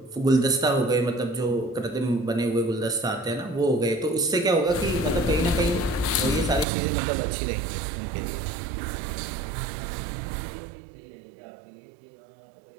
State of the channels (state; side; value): drops out; left; at 6.7 s